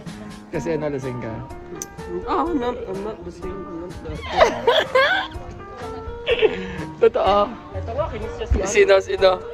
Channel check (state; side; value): identical; both; correlation 1.00